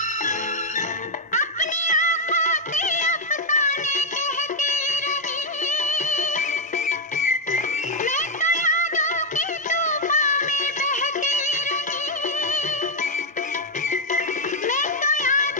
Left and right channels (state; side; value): normal; both; correlation 0.01